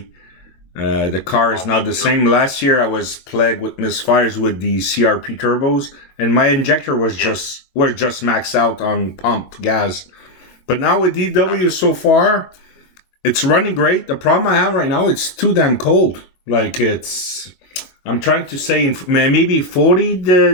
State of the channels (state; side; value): late; right; 22 ms